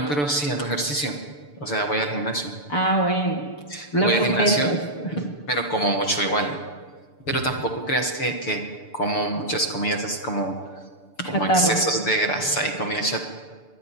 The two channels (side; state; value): right; late; 6.8 ms